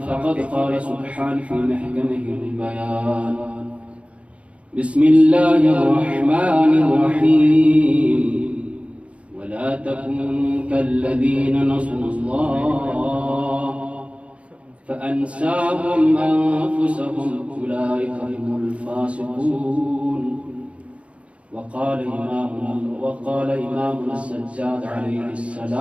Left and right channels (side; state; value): left; late; 0.062 ms